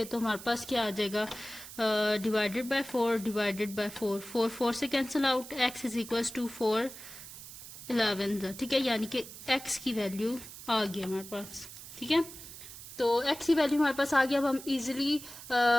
तो हमारे पास क्या आ जाएगा, डिवाइडेड बाय 4 डिवाइडेड बाय 4, 4 से cancel out, x is equals to 4 11, ठीक है, यानी कि x की वैल्यू आ गई हमारे पास, ठीक है। तो x की वैल्यू हमारे पास आ गया। अब हम इजीली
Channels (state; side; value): noise; right; hiss, 14 dB below the sound